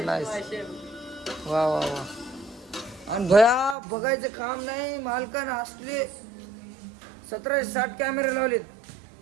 वा वा वा. आणि भया बघायचं काम नाही. मालकानं असले 1760 कॅमेरे लावलेत.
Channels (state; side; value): drops out; left; at 3.8 s